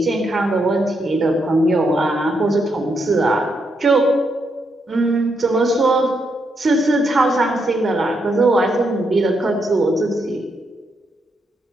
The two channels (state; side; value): normal; both; correlation 0.80